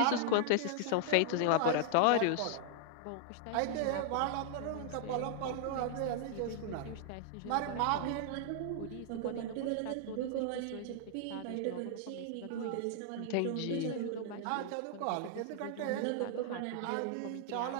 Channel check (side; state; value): both; different; correlation 0.00